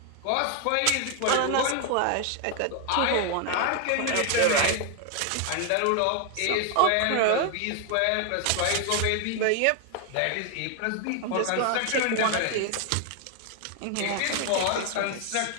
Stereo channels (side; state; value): both; different; correlation 0.00